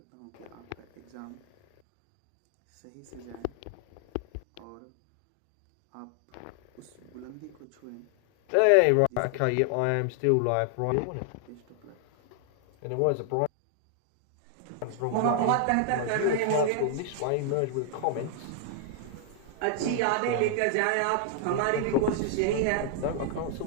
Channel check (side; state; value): both; different; correlation 0.00